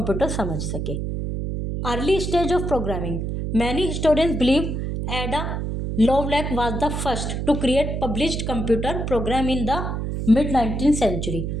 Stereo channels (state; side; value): noise; right; hum, 3 dB below the sound